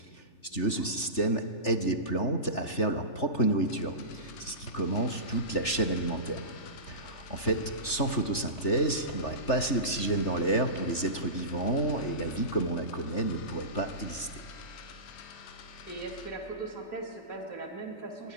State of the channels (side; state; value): right; late; 3.3 ms